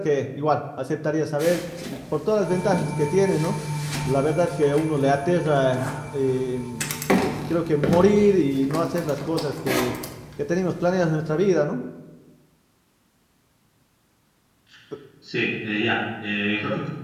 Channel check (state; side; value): identical; both; correlation 1.00